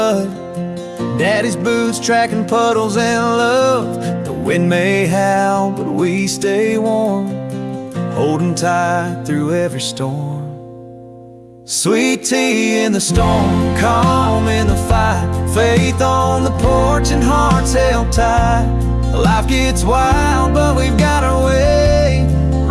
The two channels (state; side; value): identical; both; correlation 1.00